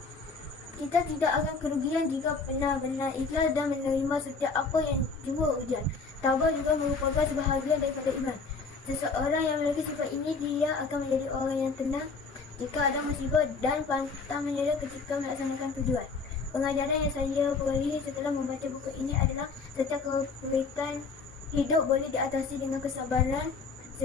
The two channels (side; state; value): right; quieter; 4.6 dB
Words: Kita tidak akan kerugian jika benar-benar ikhlas dan menerima setiap apa yang jua ujian. Tabah juga merupakan sebahagian daripada iman. Seseorang yang memiliki sifat ini, dia akan menjadi orang yang tenang jika ada musibah dan pantang menyerah ketika melaksanakan tujuan. Pengajaran yang saya peroleh setelah membaca buku ini adalah setiap kesulitan hidup boleh diatasi dengan kesabaran.